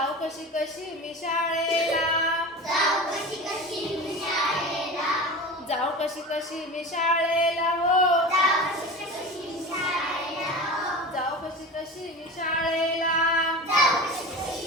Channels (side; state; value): both; normal; correlation 0.31